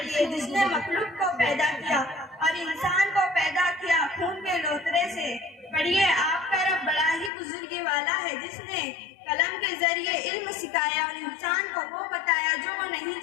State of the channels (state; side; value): drops out; right; at 7.3 s